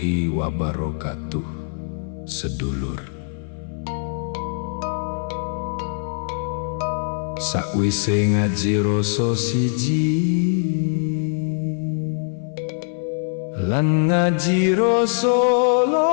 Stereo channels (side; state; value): right; silent; 59 dB below the other